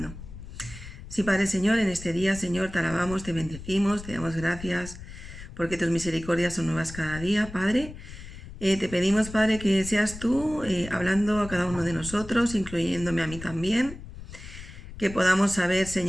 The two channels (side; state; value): left; noise; rumble, 13 dB below the sound